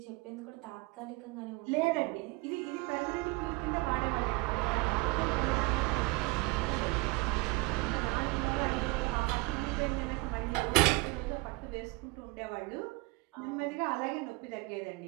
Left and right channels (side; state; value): left; quieter; 23.6 dB